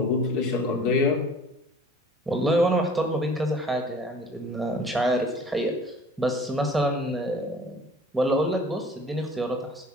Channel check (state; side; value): normal; both; correlation 0.48